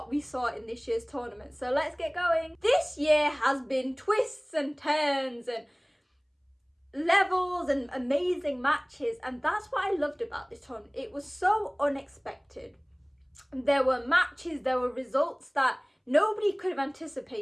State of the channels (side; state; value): both; identical; correlation 1.00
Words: we saw in this year's tournament. So let's get going. This year has been twists and turns and levels and amazing matches, and that's what I loved about this tournament. It was so unexpected. There were matches, there were results that nobody could have